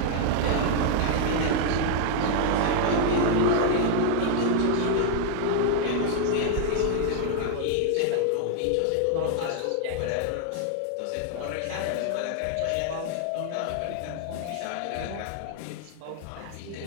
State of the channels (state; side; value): different; both; correlation 0.00